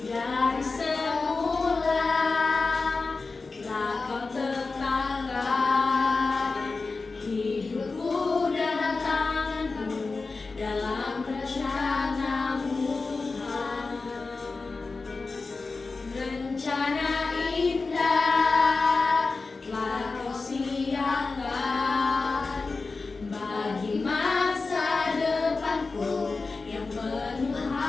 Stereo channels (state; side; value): quieter; right; 4.0 dB